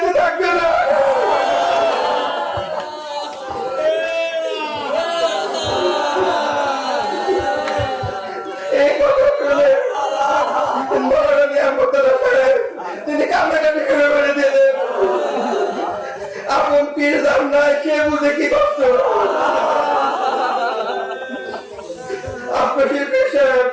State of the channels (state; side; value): identical; both; correlation 1.00